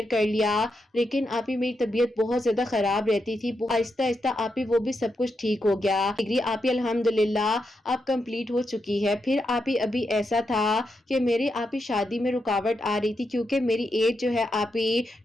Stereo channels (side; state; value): both; normal; correlation 0.84